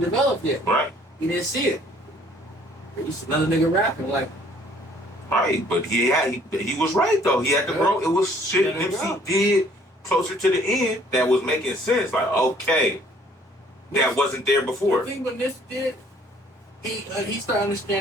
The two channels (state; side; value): normal; both; correlation 0.59